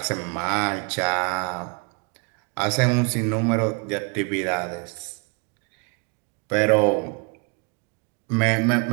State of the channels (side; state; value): left; quieter; 33.5 dB